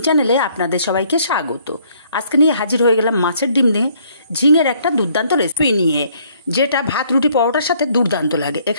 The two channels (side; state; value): both; inverted; correlation -0.64